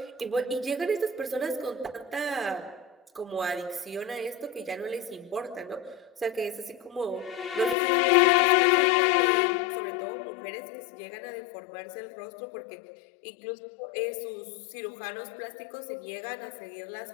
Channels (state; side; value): drops out; right; at 7.8 s